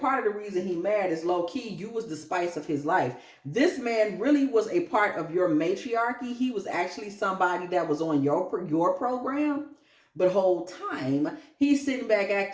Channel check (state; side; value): identical; both; correlation 1.00